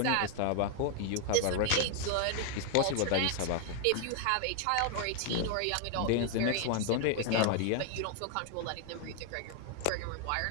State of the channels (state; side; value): different; both; correlation 0.00